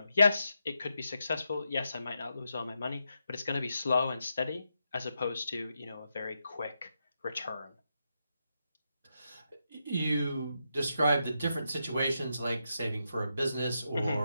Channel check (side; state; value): both; inverted; correlation -0.84